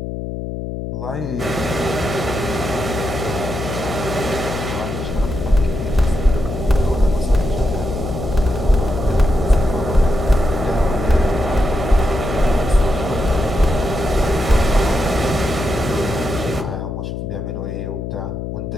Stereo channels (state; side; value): noise; left; hum, 5 dB below the sound